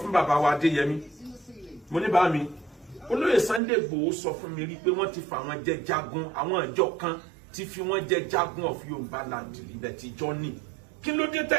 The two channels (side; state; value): left; drops out; at 3.6 s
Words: bàbá wa Adéyẹmí mo ní bá mi olóyè Sunday Igboho sọ fún mi rí pé wọ́n ti fà wọ́n jẹ jagun àwọn ìjọ kan ti fi wọ́n jẹ jagun of Yorùbá land ibẹ̀ ti jọ ní kí ló dé